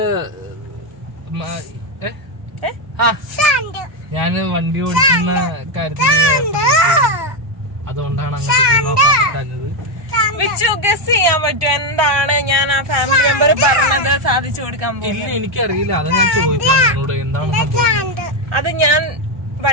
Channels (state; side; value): late; left; 1.2 ms